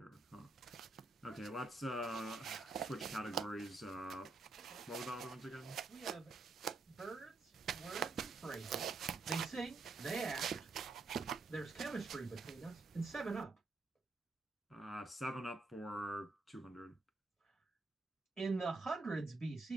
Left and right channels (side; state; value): left; quieter; 3.6 dB